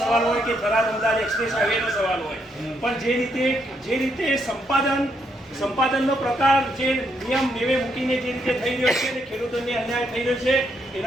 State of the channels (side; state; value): both; normal; correlation 0.76